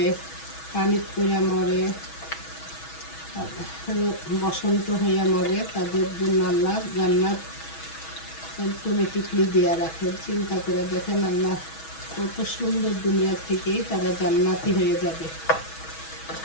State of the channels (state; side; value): late; right; 6.2 ms